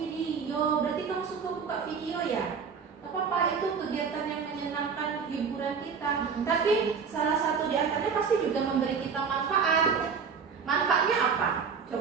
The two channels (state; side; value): quieter; left; 6.0 dB